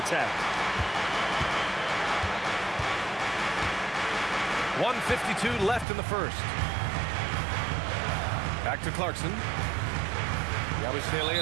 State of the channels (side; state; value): left; drops out; at 5.9 s